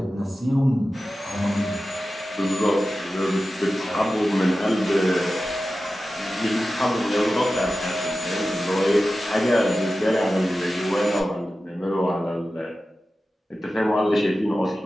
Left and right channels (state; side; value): normal; both; correlation 0.94